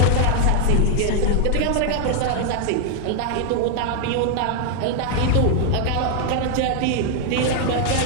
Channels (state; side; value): different; both; correlation 0.00